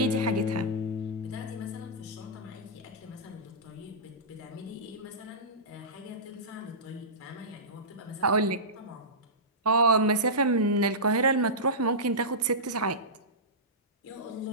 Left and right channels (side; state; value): both; normal; correlation -0.17